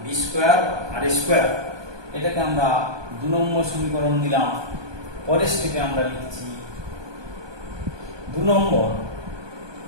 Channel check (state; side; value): late; left; 1.2 ms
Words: B square R square. এটাকে আমরা 2 নম্বর সমীকরণ দিলাম। পরের স্টেপে আমরা লিখছি 2 নম্বর